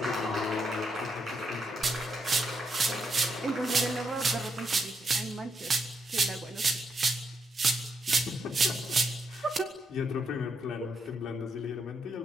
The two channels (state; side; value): normal; both; correlation 0.79